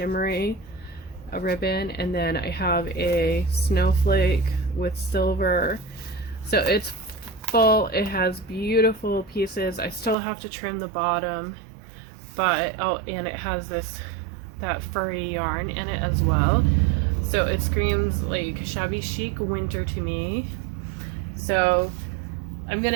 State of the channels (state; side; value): drops out; left; at 10.2 s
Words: ribbon, and then I have a snowflake with silver. So it's full. It has beautiful pieces. I still have to trim the bottom, but and it has that furry yarn in it as well. So it screams like Shabby Chic winter to me. So I'm